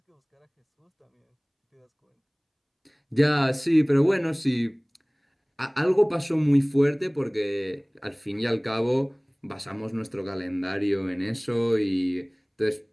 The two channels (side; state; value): both; identical; correlation 1.00